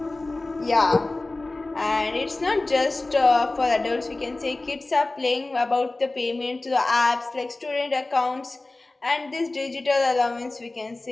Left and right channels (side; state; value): right; quieter; 3.0 dB